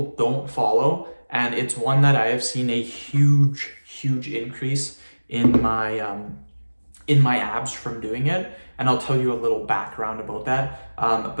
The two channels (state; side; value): inverted; both; correlation -1.00